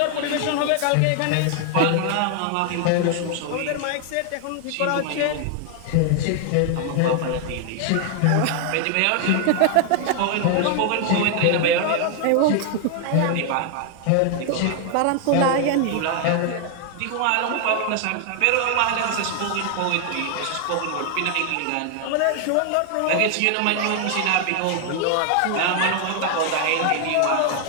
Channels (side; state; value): both; different; correlation 0.00